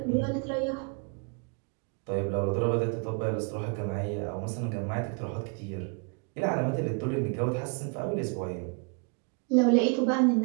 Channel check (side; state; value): left; quieter; 35.4 dB